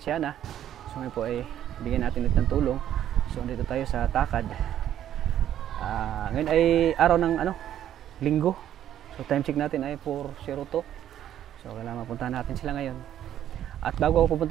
Hana. So ngayon po ay bigyan natin ulit ng tulong. So dito tayo sa Takad. Ngayon ay araw ng linggo. So time check natin ay 4:02. So kailangan mapuntahan natin sila ngayon. At bago ako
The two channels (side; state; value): left; quieter; 11.1 dB